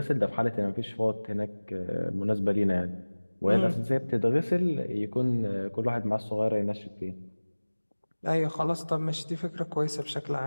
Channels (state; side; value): inverted; both; correlation -1.00